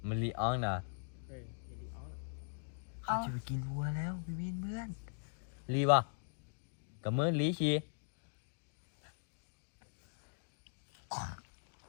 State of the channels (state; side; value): silent; right; digital silence